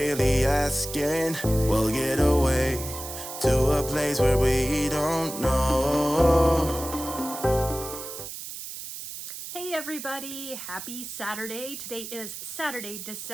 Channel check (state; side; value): noise; right; hiss, 9 dB below the sound